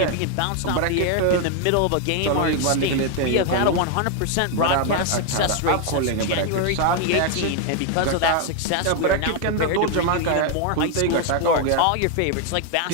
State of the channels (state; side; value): different; both; correlation 0.01